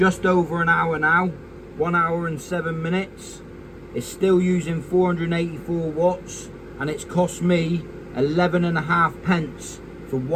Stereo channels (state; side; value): identical; both; correlation 1.00